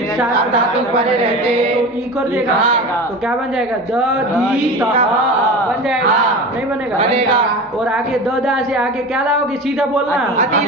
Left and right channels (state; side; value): normal; both; correlation 0.31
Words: हाँ, सात धातु परे रहते। तो ई कर देगा हाँ। तो क्या बन जाएगा द दी त बन जाएगा हाँ। नहीं बनेगा बनेगा। और आगे द दा से आगे क्या लाओगे सीधा बोलना अति